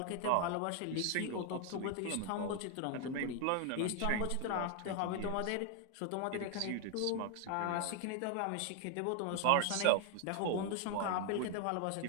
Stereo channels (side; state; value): both; different; correlation 0.00